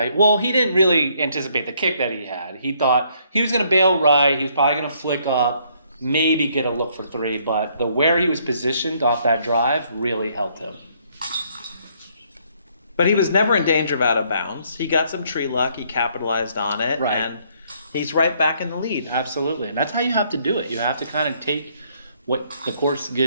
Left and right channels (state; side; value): inverted; both; correlation -0.68